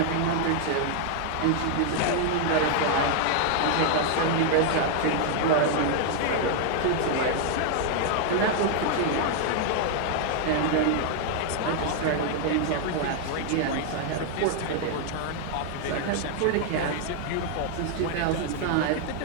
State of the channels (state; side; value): different; both; correlation 0.00